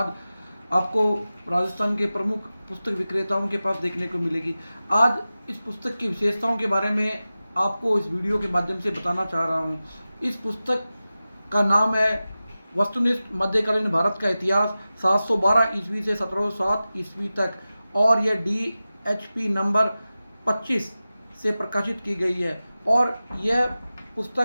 आपको राजस्थान के प्रमुख पुस्तक विक्रेताओं के पास देखने को मिलेगी। आज इस पुस्तक की विशेषताओं के बारे में आपको इस वीडियो के माध्यम से बताना चाह रहा हूँ। इस पुस्तक का नाम है वस्तुनिष्ठ मध्यकालीन भारत का इतिहास 712 ईस्वी से 1707 ईस्वी तक और यह DHP नंबर 25 से प्रकाशित की गई है। और यह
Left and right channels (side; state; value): both; inverted; correlation -0.95